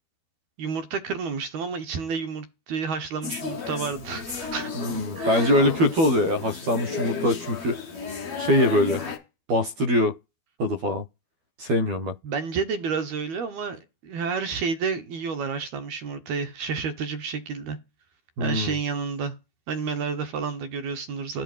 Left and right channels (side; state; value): left; late; 12 ms